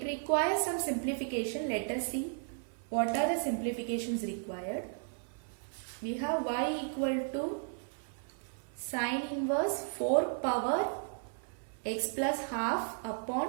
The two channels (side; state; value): left; silent; 55 dB below the other